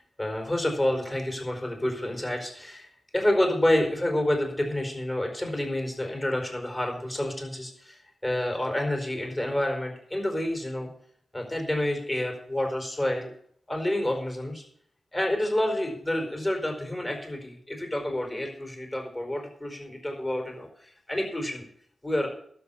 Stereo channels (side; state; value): both; normal; correlation 0.97